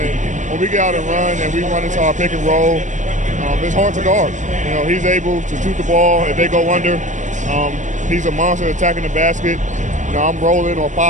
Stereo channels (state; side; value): late; left; 0.35 ms